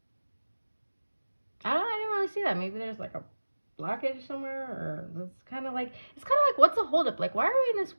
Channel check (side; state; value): both; inverted; correlation -1.00